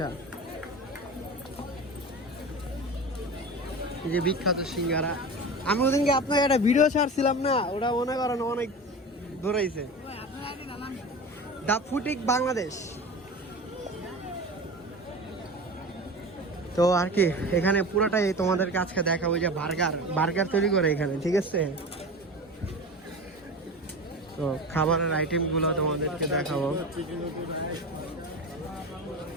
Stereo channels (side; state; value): both; normal; correlation 0.30